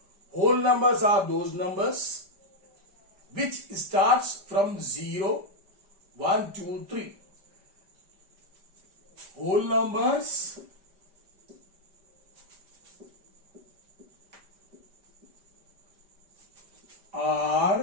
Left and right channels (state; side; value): late; left; 5.1 ms